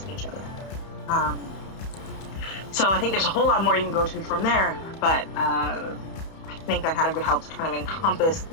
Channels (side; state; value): right; late; 31 ms